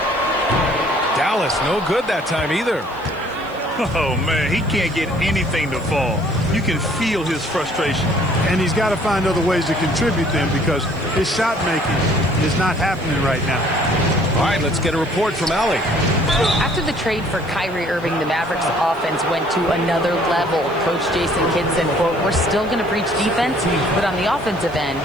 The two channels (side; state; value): right; noise; hiss, 27 dB below the sound